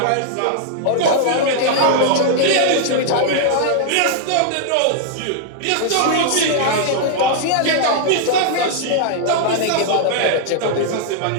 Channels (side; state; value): both; different; correlation -0.01